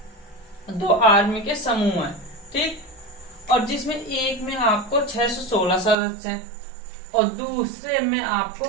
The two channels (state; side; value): drops out; left; at 6.0 s